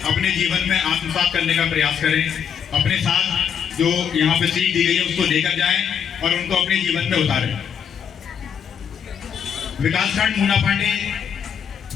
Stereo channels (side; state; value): right; quieter; 7.8 dB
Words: अपने जीवन में आत्मसात करने का प्रयास करें। अपने साथ जो यहाँ पे सीख दी गई है उसको लेकर जाएं और उनको अपने जीवन में उतारें। विकासखंड मूना पांडे